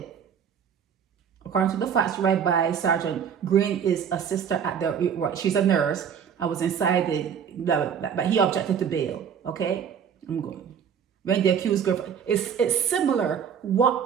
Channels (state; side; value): quieter; left; 7.8 dB